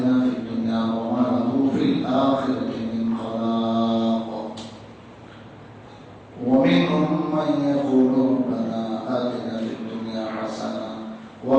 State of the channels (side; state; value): both; identical; correlation 1.00